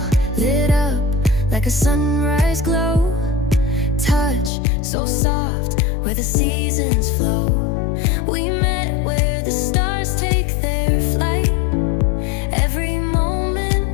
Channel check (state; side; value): drops out; right; at 4.5 s